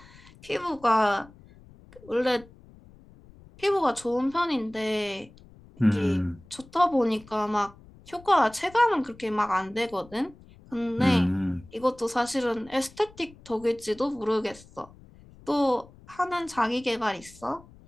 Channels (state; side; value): noise; left; rumble, 23 dB below the sound